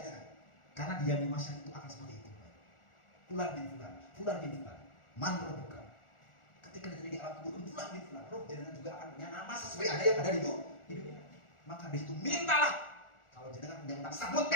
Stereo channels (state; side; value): late; right; 1.4 ms